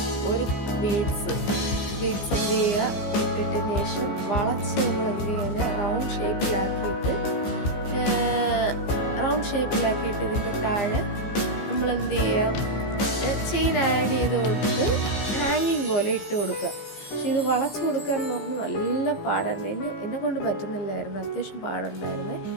ഒരു ബീഡ്സ് എന്ത് ചെയ്യുക, ഇട്ടതിന് ശേഷം വളച്ച് നമ്മൾ എന്ത് ചെയ്യുക, റൗണ്ട് ഷേപ്പിലാക്കിയിട്ട് ഇതിൻ്റെ താഴെ നമ്മൾ എന്ത് ചെയ്യുക, ചെയിൻ ആഡ് ചെയ്ത് കൊടുത്ത് ഹാങ്ങിങ് പോലെ ഇട്ട് കൊടുക്കുക. പക്ഷെ ഇത് വളച്ച് കൊടുക്കുക എന്ന് പറഞ്ഞാൽ നല്ല പാടായിരുന്നു. എന്നെ കൊണ്ട് പറ്റുന്നില്ലായിരുന്നു, അത്യാവശ്യം പാടുണ്ടായിരുന്നേ.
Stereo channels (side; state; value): right; late; 15 ms